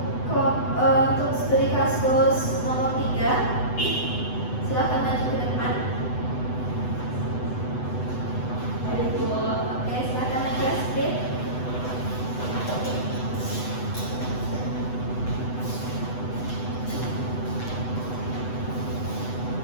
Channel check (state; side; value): late; right; 8.0 ms